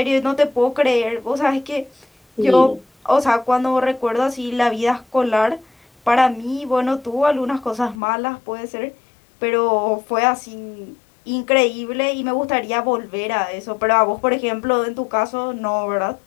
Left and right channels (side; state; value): right; drops out; at 8.0 s